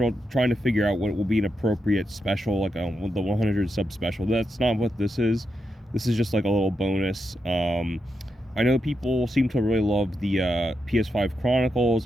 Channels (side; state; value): both; normal; correlation 0.85